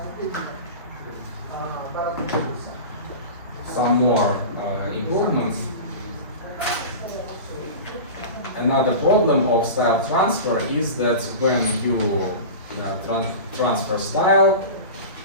Some more improvements. Another problem of style transfer is that when you transfer style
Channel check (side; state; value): both; inverted; correlation -0.30